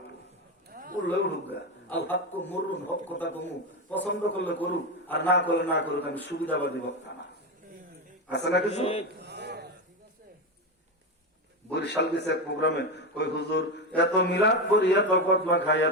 বললো উঠুক গা, আল হক মরুন, হক কথা কমু, পছন্দ করলে করুক আর না করলে না করুক, আমি সুবিধাবাদী বক্তা না। আছে না কিছু? বরিশাল গেছে এক প্রোগ্রামে, কই হুজুর এত মিলাদ করি, এত কতবা খাই,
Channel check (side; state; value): both; normal; correlation 0.15